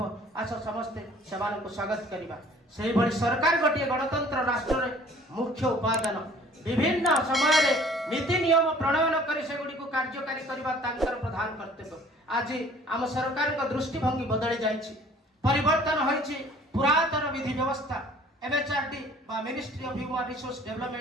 आस समस्ते समान को स्वागत करबा सेही भली सरकार गोटे गणतंत्र राष्ट्र रे मुख्य उपादान विभिन्न समय रे नीति नियम प्रणयन करी सेगुडी को कार्यकारी करबा तांकर प्रधान कर्तव्य आज आम सरकार का दृष्टिभंगी बदली जाइछि परिवर्तन होइछि पुरातन विधि व्यवस्था एमएचआरडी बा ministry of human resource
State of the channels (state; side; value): normal; both; correlation 0.52